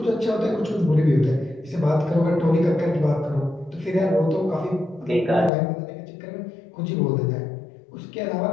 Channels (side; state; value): right; drops out; at 5.5 s